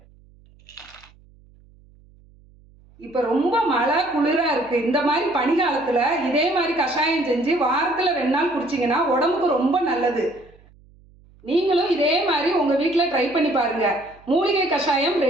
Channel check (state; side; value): noise; right; hum, 28 dB below the sound